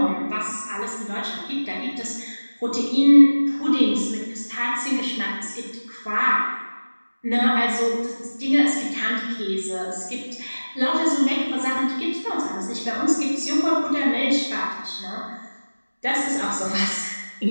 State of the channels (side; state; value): both; inverted; correlation -1.00